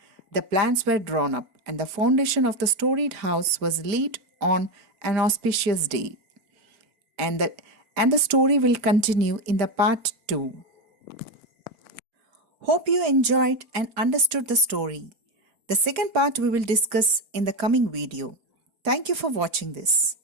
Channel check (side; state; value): left; late; 4.4 ms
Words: The plans were drawn up, and the foundation of the storied house was laid on an auspicious day. And the story will continue in the part 2. Hope you enjoyed and understood the story. The second part we will discuss in the coming video. Thank you for watching this.